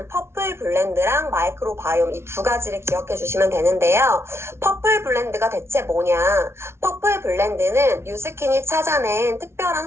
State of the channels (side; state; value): left; late; 0.12 ms